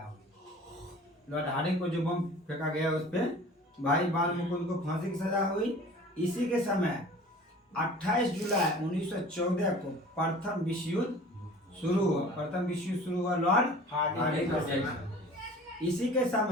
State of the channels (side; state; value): both; normal; correlation 0.44